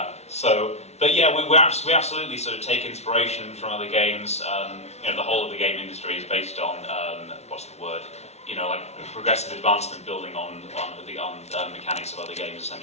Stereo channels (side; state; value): right; late; 0.31 ms